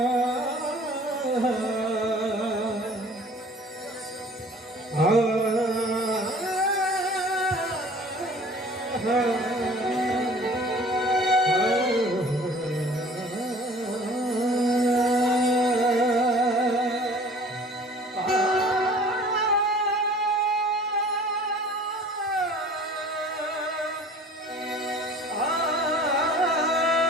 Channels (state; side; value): normal; both; correlation 0.48